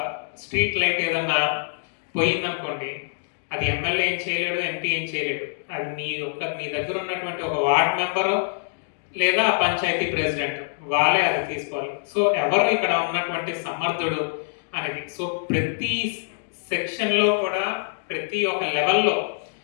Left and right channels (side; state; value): right; silent; digital silence